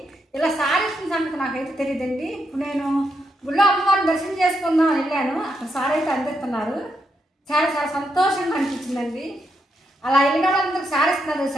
ఇలా సారీ ఇచ్చిన సంగతి నాకైతే తెలియదండి. ఇప్పుడు నేను గుళ్ళో అమ్మవారిని దర్శనం చేసుకుందాం వెళ్ళాను, అక్కడ సారీ అయితే అందిస్తున్నారు. చాలా చాలా సంతోషంగా అనిపించిందండి. అలా వెళ్ళిన వాళ్ళందరికీ సారీ ఇస్తున్నారు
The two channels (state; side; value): normal; both; correlation 0.81